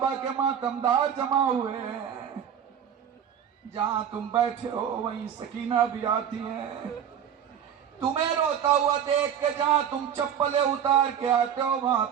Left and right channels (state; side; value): quieter; left; 8.9 dB